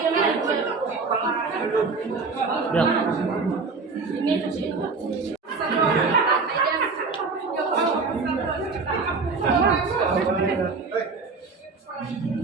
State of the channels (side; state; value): left; quieter; 4.3 dB